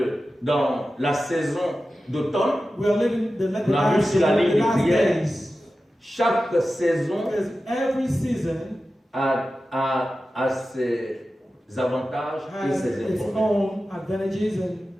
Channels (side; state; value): both; normal; correlation 0.93